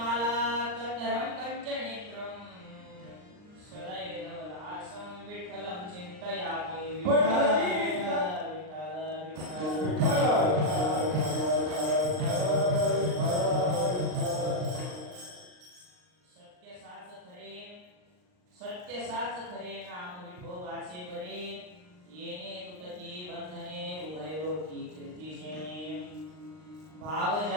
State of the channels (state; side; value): late; left; 39 ms